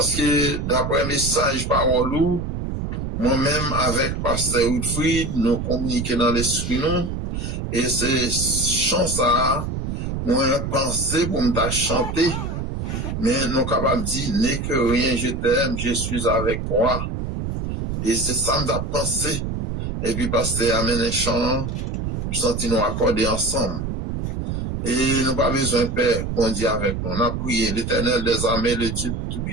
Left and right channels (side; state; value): right; noise; rumble, 4 dB below the sound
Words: que d'après le message parole, moi-même avec Pasteur Woodfried, nous communiquons dans l'esprit, nous, et c'est chance à moi penser pour me chanter, mais nous capables de dire, n'est que rien, je t'aime, je suis avec toi. Et c'est ça que j'ai pensé. Et puis, Pasteur amène un chant, nous sentons nous accorder ensemble. Et nous n'avons pas besoin, Père, bon Dieu avec nous. On a prié l'Éternel des armées, le Dieu